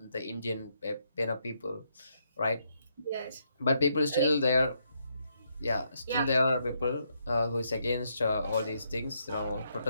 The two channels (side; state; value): both; inverted; correlation -0.76